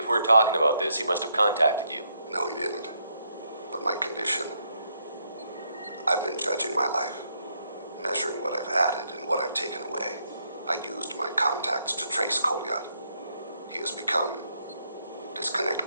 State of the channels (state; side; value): inverted; both; correlation -0.75